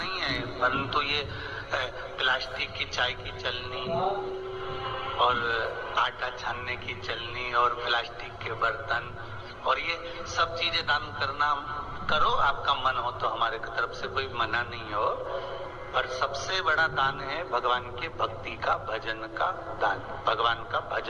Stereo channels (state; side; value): identical; both; correlation 1.00